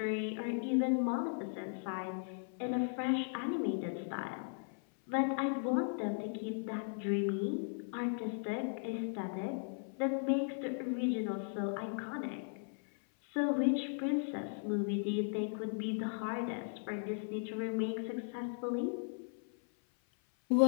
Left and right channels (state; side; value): silent; right; 53 dB below the other